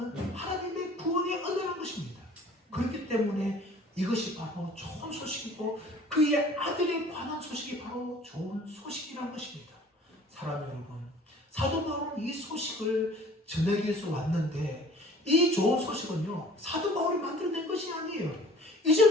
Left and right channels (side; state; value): both; normal; correlation 0.49